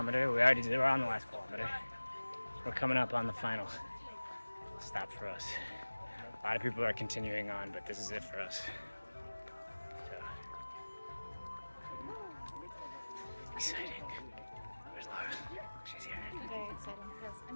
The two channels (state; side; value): inverted; both; correlation -1.00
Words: We're on the last kilometer. We're coming up on the final stop for us. A lot of people are continuing on, but this is it for us. So, exciting. Where's Laura? She's here. Very exciting. Yes,